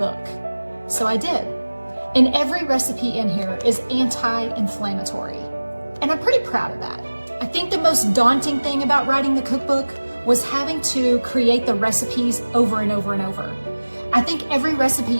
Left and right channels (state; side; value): inverted; both; correlation -1.00